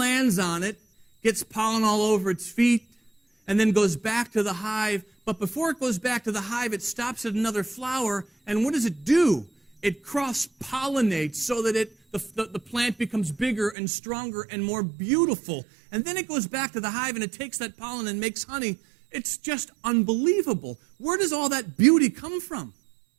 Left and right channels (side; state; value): left; drops out; at 13.8 s